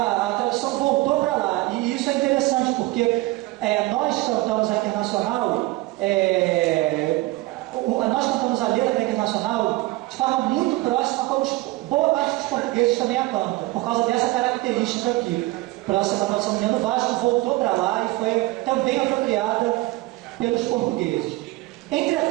tradução voltou para lá, e isso é interessante porque nós cantamos a Internacional, nós cantamos a letra da Internacional de forma muito próxima, como boa parte dos portugueses também a canta, por causa dessa característica aqui. Próxima tradução do Neno Vasco voltou para lá e foi também apropriada pelos portugueses.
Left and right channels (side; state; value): left; quieter; 20.0 dB